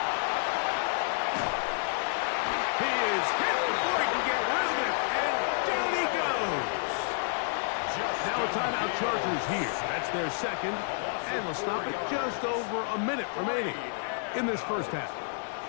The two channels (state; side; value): silent; right; digital silence